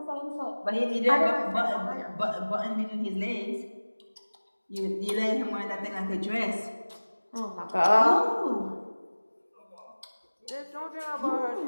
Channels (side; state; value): both; inverted; correlation -1.00